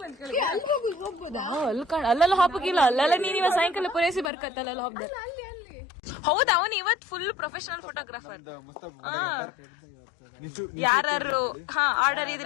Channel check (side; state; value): right; drops out; at 4.3 s